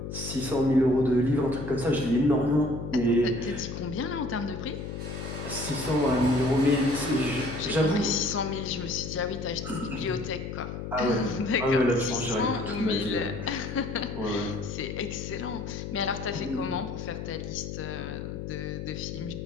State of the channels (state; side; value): noise; left; hum, 6 dB below the sound